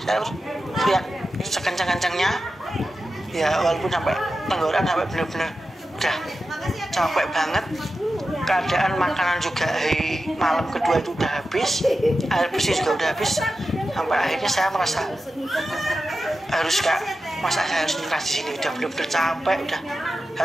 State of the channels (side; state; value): both; normal; correlation 0.92